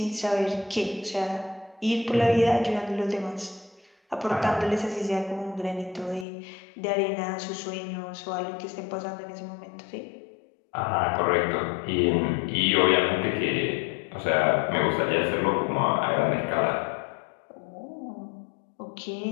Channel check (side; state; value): right; drops out; at 6.2 s